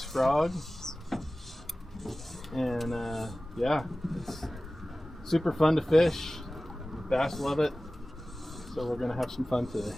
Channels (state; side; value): normal; both; correlation 0.97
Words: frog. And yeah, it's super fun to fish. Bass love it. So we're gonna have some fun today.